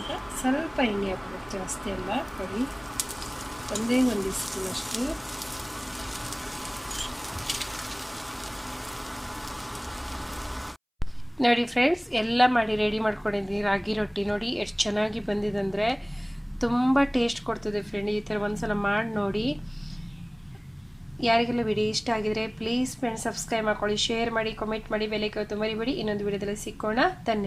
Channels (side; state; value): both; identical; correlation 1.00